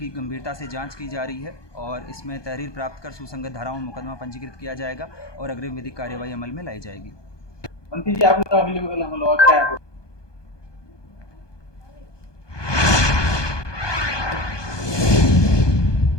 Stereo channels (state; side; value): late; right; 1.2 ms